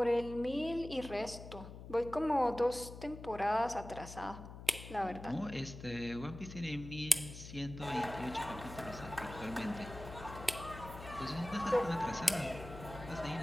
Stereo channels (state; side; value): noise; left; hum, 12 dB below the sound